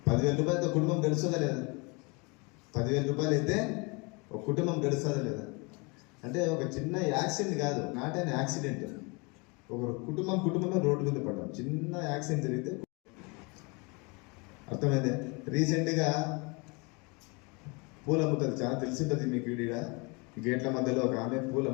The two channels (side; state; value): right; quieter; 29.5 dB